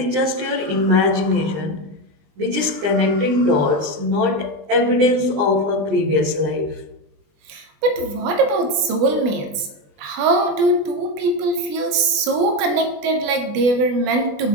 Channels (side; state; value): left; late; 20 ms